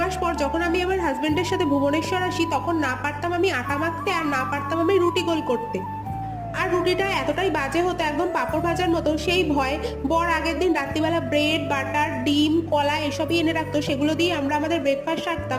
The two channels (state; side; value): identical; both; correlation 1.00